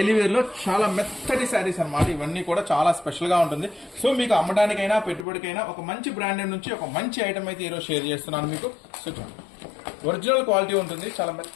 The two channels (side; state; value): right; drops out; at 5.2 s